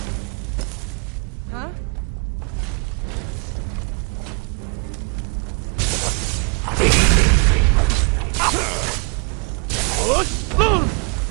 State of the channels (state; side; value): quieter; left; 33.0 dB